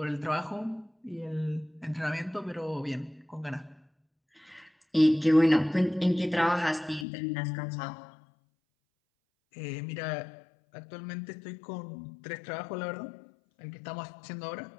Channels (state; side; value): drops out; right; at 7.1 s